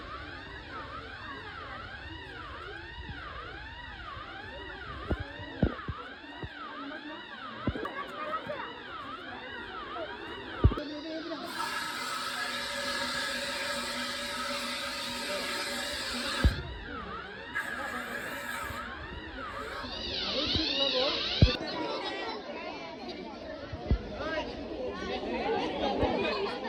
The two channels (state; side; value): identical; both; correlation 1.00